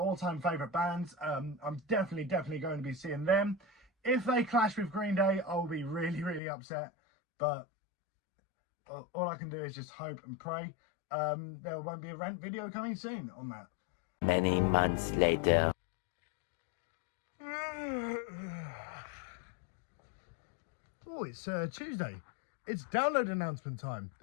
favourite bands. I'm definitely going to be seeing them. If they clash with Green Day, I'll be really upset. But all I can do is just hope and pray. There won't be a rant video coming soon on that. Many months later. Oh, it's Tuesday. It's download announcement time.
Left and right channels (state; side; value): drops out; right; at 6.4 s